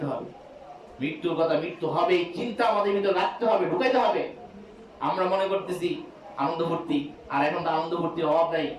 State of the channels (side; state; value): both; identical; correlation 1.00